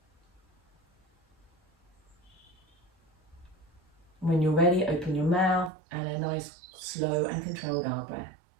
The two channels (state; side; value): drops out; left; at 5.7 s